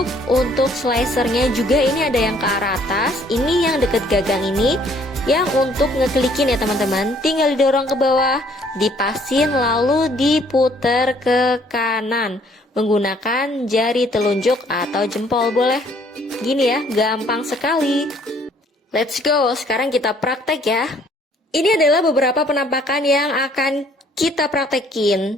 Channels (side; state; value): both; normal; correlation 0.61